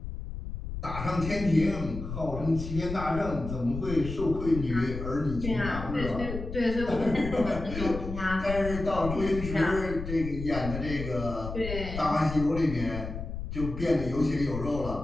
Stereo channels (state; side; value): noise; left; rumble, 7 dB below the sound